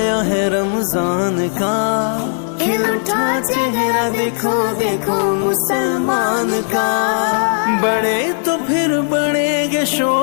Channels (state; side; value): silent; right; digital silence